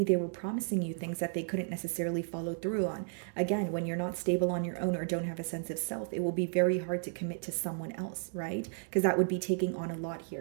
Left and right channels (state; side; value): silent; left; 56 dB below the other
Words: they were promising you things that they couldn't necessarily follow through on. Again, when you're not stable on your own or don't have a sense of self, it will be very hard to commit to someone else, right? Because that would be taking on a lot